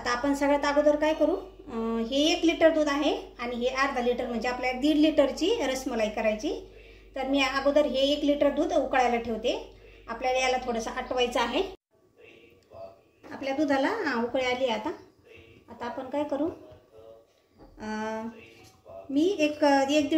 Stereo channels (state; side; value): identical; both; correlation 1.00